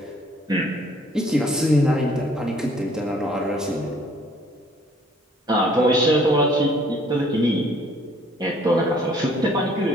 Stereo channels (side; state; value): both; normal; correlation 0.59